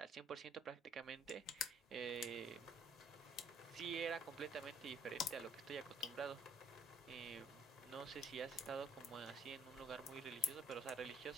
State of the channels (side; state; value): both; normal; correlation 0.61